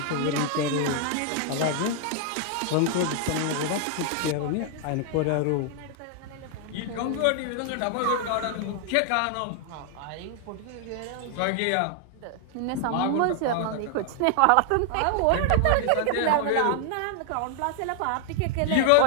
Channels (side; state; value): both; different; correlation 0.00